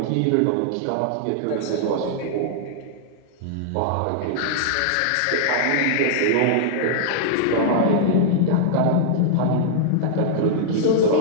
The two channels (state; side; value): different; both; correlation -0.01